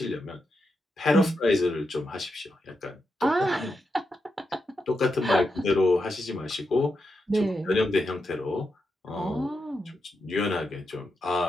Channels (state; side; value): normal; both; correlation 0.86